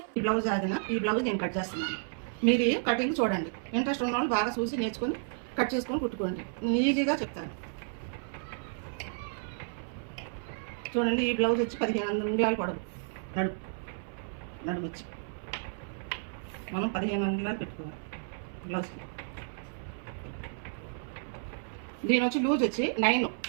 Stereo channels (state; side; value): silent; left; 56 dB below the other